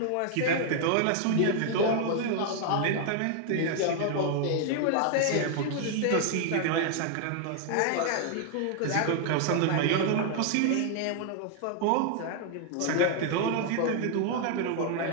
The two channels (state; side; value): different; both; correlation 0.00